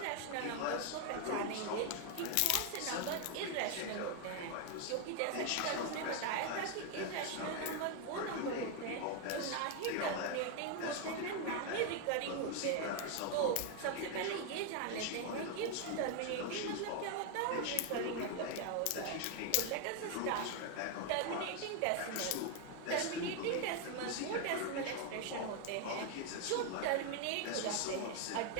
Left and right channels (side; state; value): both; different; correlation 0.01